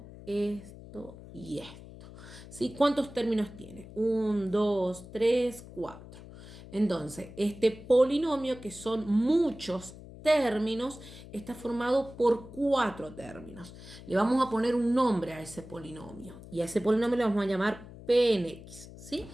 esto y esto. ¿Sí? ¿Cuántos términos tiene? 1, 2, 3, 4. Entonces, este polinomio, que son muchos términos, está formado por 4 términos. Le vamos a poner un nombre a ese polinomio y a ese polinomio le vamos a llamar P en X, ¿sí?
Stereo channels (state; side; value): noise; left; hum, 16 dB below the sound